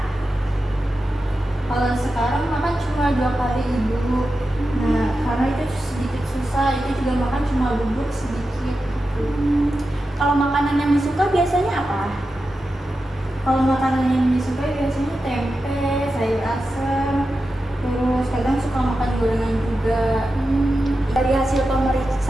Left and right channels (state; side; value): normal; both; correlation 0.91